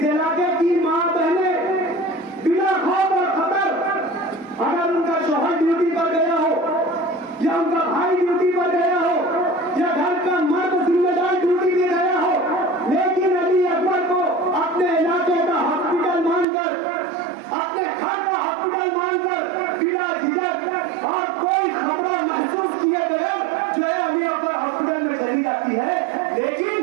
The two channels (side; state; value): left; drops out; at 16.4 s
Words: इलाके की मां बहनें बिना खौफ और खतर, अगर उनका शौहर ड्यूटी पर गया हो या उनका भाई ड्यूटी पर गया हो या घर का मर्द जिम्मेदार ड्यूटी में गया हो, लेकिन अली अकबर को अपने इलाके का हॉस्पिटल मानकर, अपने घर का हॉस्पिटल मानकर बिना झिझक और कोई खतरा महसूस किए बगैर जो है अली अकबर हॉस्पिटल में चली जाती है।